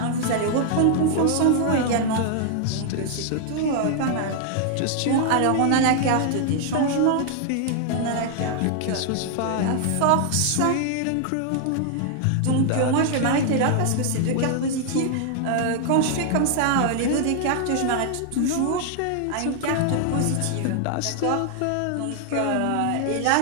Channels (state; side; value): different; both; correlation 0.00